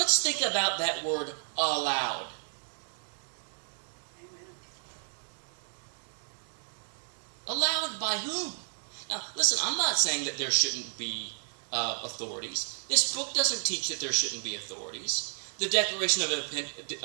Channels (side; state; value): left; silent; digital silence